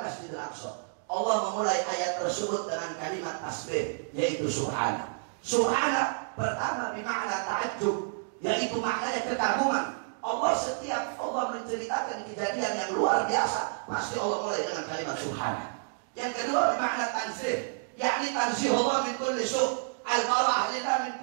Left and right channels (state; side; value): silent; left; digital silence